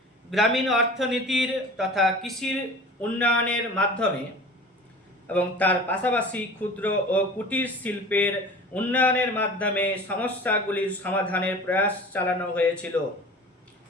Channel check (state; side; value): normal; both; correlation 0.39